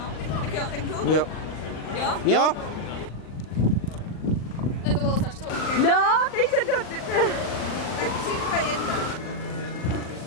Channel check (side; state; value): right; late; 39 ms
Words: tak jo, tak jdu. Jo. Jo? Jo? Ne, to bylo strašně. No, teď se to... Tak 3, 2, 1.